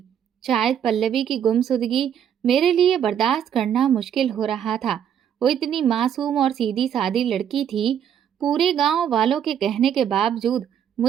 शायद पल्लवी की गुमसुदगी मेरे लिए बर्दाश्त करना मुश्किल हो रहा था। वो इतनी मासूम और सीधी सादी लड़की थी। पूरे गांव वालों के कहने के बावजूद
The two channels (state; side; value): quieter; left; 9.1 dB